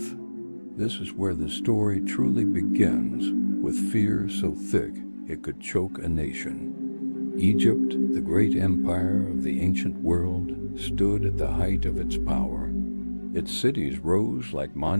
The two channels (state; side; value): inverted; both; correlation -1.00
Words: This is where the story truly begins, with fear so thick it could choke a nation. Egypt, the great empire of the ancient world, stood at the height of its power. Its cities rose like